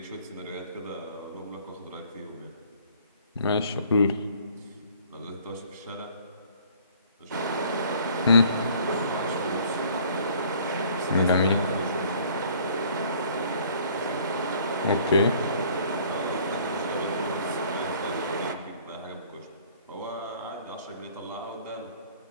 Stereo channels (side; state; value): both; inverted; correlation -0.55